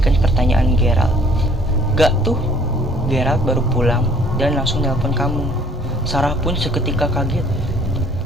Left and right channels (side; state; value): both; normal; correlation 0.57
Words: pertanyaan Gerald. Gak tuh, Gerald baru pulang dan langsung nelpon kamu. Sarah pun seketika kaget.